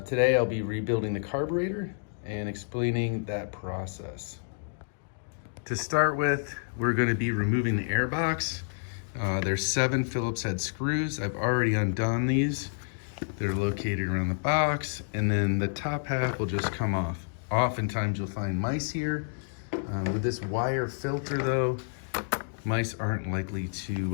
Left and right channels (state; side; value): silent; right; digital silence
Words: Today I'll be rebuilding the carburetor and explaining that process. To start with, we're going to be removing the air box. There's 7 Phillips head screws. I've already undone these. They're located around the box, and then the top half will just come off. Oftentimes you'll find mice here. With this wire filter though, mice aren't likely